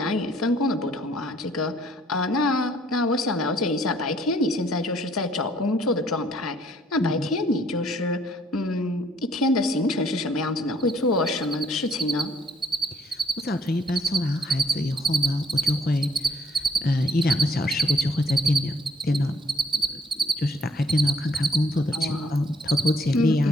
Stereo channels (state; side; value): normal; both; correlation 0.65